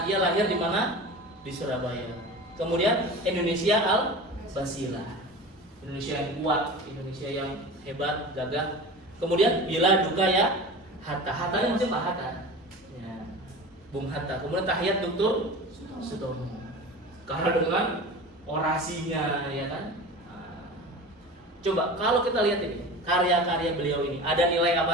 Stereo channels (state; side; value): normal; both; correlation 0.34